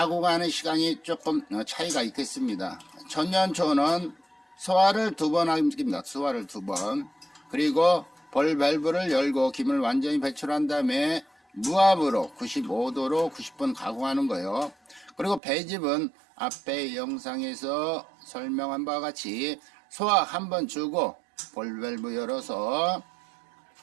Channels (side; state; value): left; drops out; at 15.4 s